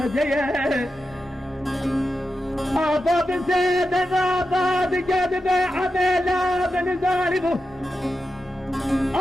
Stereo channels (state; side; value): normal; both; correlation 0.90